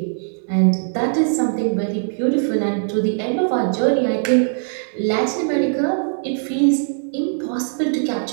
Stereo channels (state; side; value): silent; left; 60 dB below the other